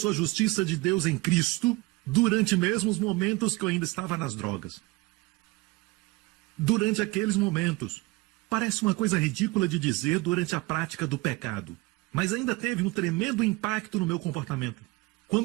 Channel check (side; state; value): left; quieter; 22.5 dB